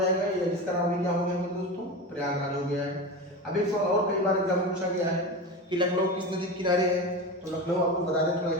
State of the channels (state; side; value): normal; both; correlation 0.25